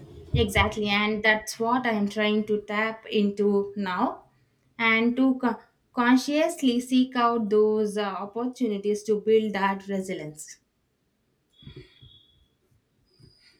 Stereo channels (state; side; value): identical; both; correlation 1.00